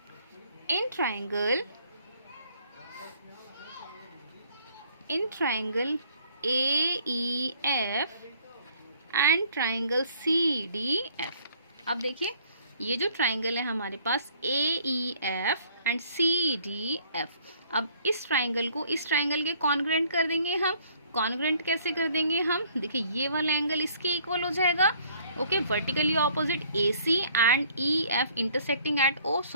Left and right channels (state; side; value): inverted; both; correlation -0.59